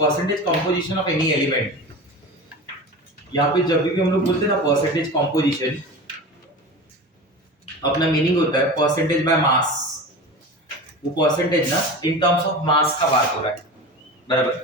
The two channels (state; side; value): normal; both; correlation 0.31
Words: composition of any element. यहाँ पे जब भी हम लोग बोलते हैं ना परसेंटेज कंपोजिशन, अपना मीनिंग होता है परसेंटेज बाय मास। वो परसेंटेज ना इन टर्म्स ऑफ मास का बात हो रहा है, बराबर।